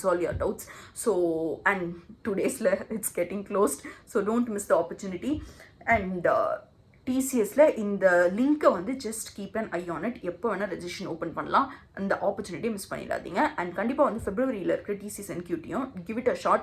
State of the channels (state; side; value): identical; both; correlation 1.00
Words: your doubts. So and 2 days it's getting closed. So don't miss the opportunity. And டிசிஎஸ்ல இந்த லிங்க்கை வந்து just keep an eye on it. எப்போ வேணால் ரெஜிஸ்ட்ரேஷன் ஓப்பன் பண்ணலாம். அந்த ஆப்பர்ச்சுனிட்டியை மிஸ் பண்ணிடாதீங்க. அண்ட் கண்டிப்பாக வந்து ஃபெப்ரவரியில் இருக்கிற டிசிஎஸ் என்கியூட்டியும் give it a